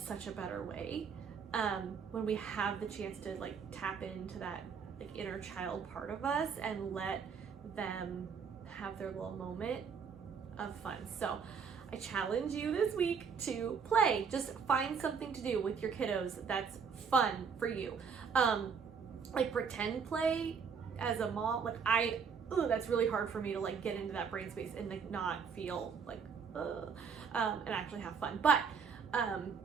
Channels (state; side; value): quieter; left; 6.2 dB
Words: a better way. When we have the chance to like tap into that like inner child part of us and let them have their little moment of fun. So I challenge you this week to play. Just find something to do with your kiddos that's fun for you. Like pretend play as a mom, like that's really hard for me to like get into that brain space and like not feel like and actually have fun. But